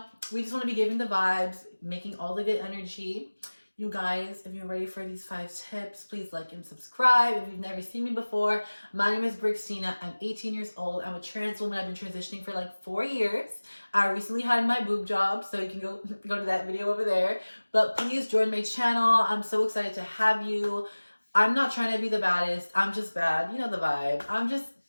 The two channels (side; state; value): both; inverted; correlation -1.00